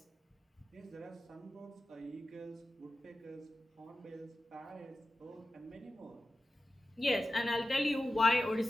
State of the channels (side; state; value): both; normal; correlation 0.93